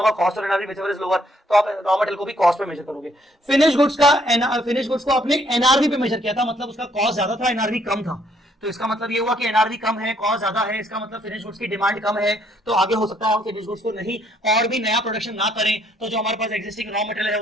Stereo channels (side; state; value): both; normal; correlation 0.68